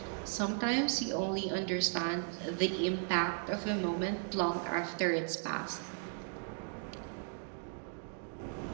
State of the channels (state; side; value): silent; left; 54 dB below the other